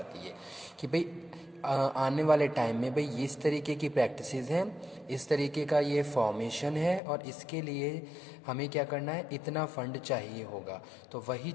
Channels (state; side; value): drops out; right; at 7.0 s